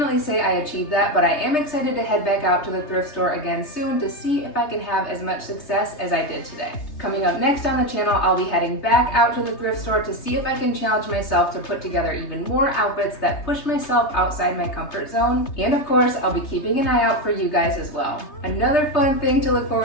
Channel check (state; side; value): late; right; 3.3 ms